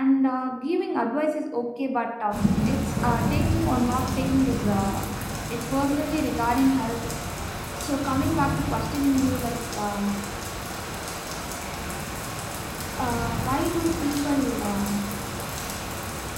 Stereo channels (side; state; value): both; identical; correlation 1.00